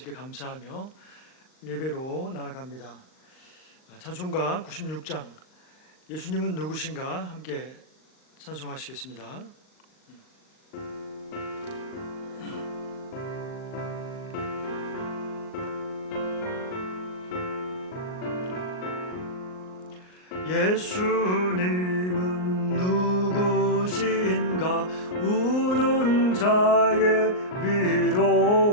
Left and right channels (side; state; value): right; late; 39 ms